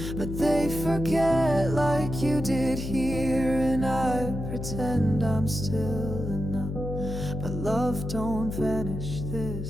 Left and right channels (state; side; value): noise; left; hum, 6 dB below the sound